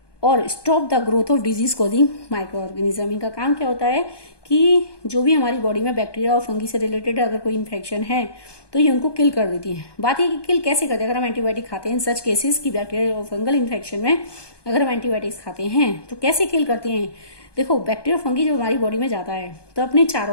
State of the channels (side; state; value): right; late; 1.2 ms